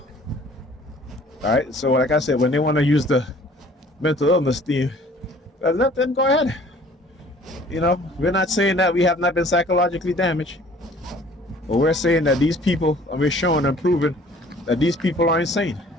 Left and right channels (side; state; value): both; normal; correlation 0.52